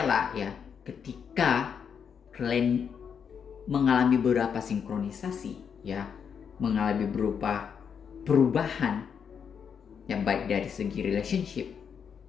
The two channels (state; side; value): quieter; right; 7.1 dB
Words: ya, ketika kalian mengalami beberapa sinkronisasi, ya, mengalami berupa perubahan, ya, baik dari segi relationship,